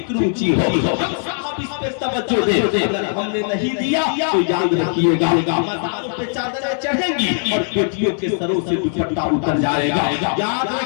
اونچی ہو, ہم صاحب اس پہ توجہ دیں. اگر ہم نے نہیں دیا تو یاد رکھیے گا مزاروں پہ چادریں چڑھیں گی اور بیٹیوں کے سروں سے دوپٹہ اتر جائے گا. یاد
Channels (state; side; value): silent; right; digital silence